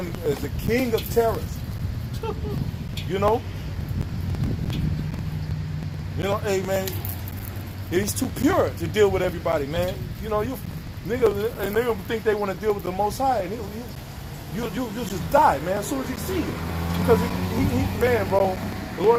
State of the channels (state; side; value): identical; both; correlation 1.00